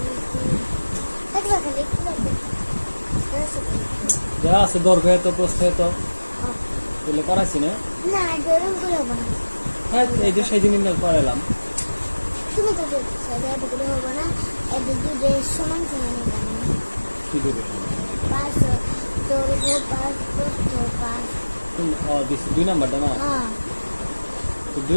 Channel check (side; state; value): both; inverted; correlation -1.00